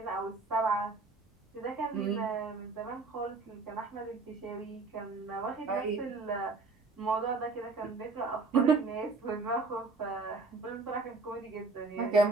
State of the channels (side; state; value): left; quieter; 3.8 dB